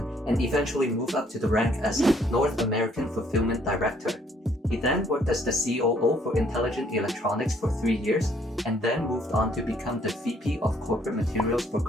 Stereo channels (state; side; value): normal; both; correlation 0.65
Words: and eventually moved up to the rank as North American Fulfillment Director. He then worked as the COO for Intelligent Electronics for 3 years and then moved on to become the VP of Corporate Materials for